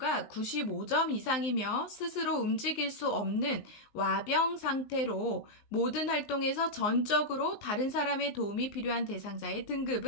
95점 이상이며 스스로 움직일 수 없는 와병 상태로 모든 활동에서 전적으로 다른 사람의 도움이 필요한 대상자의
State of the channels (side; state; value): right; late; 19 ms